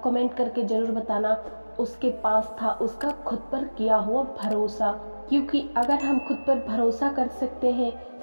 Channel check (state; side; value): inverted; both; correlation -1.00